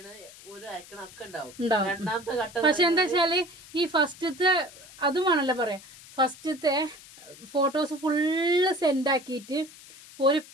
പക്ഷെ എന്താ വെച്ചാല് ഈ ഫസ്റ്റത്തെ അതുമാണല്ലോ പറയാം. ഫസ്റ്റത്തെ ഫോട്ടോസ് ഫുള്ള് സെൻഡ് ആക്കിയിട്ട്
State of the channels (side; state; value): left; noise; hiss, 20 dB below the sound